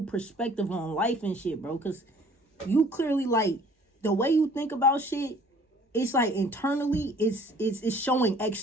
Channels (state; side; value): normal; both; correlation 0.54